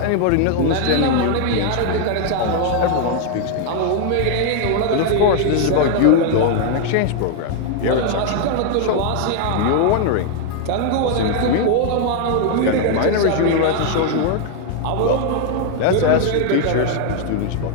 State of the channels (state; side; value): different; both; correlation 0.00